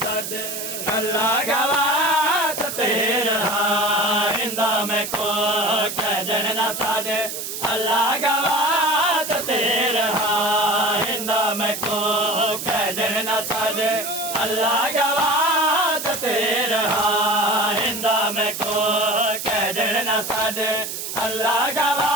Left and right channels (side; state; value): right; noise; hiss, 6 dB below the sound